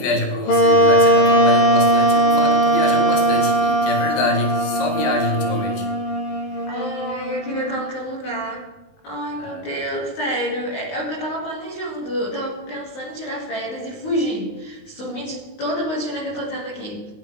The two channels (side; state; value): right; late; 20 ms